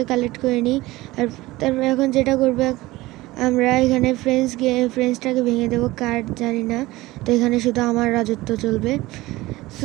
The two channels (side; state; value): left; quieter; 19.1 dB